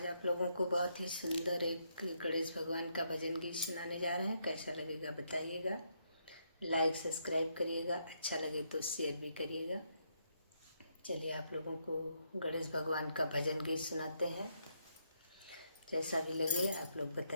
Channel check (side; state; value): both; inverted; correlation -0.76